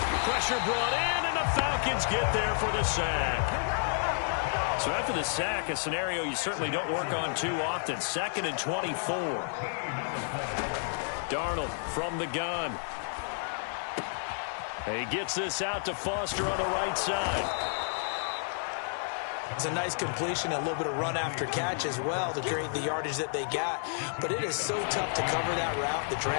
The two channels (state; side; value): silent; right; digital silence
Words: Pressure brought in, and the Falcons get there for the sack. So after the sack, a scenario you certainly don't work on too often. 2nd and 24. Darnold from the gun. He gets this out to Foster on the right side. It's a nice completion, a little bit of run after catch as well to create the yardage that they got. But it is so tough to cover that route, the